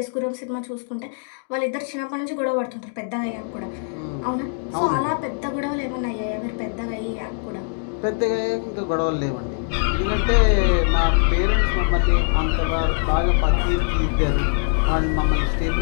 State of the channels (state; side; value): silent; right; 64 dB below the other